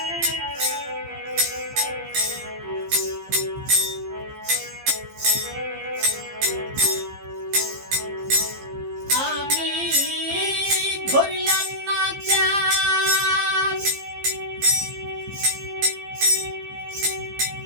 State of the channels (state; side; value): late; left; 15 ms